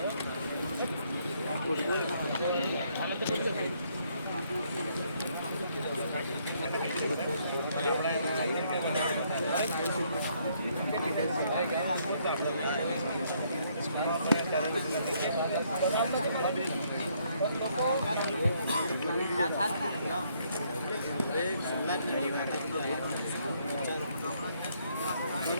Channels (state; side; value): inverted; both; correlation -0.70